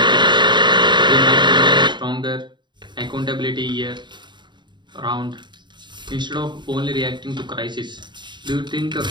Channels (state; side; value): late; left; 0.22 ms